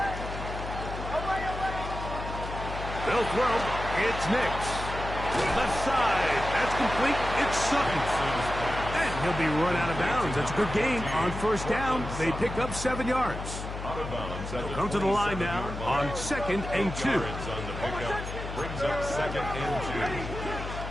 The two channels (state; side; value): noise; left; hum, 7 dB below the sound